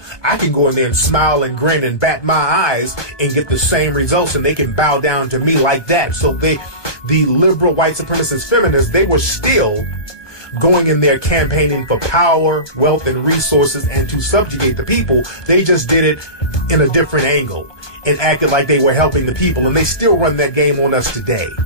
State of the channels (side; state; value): right; late; 1.2 ms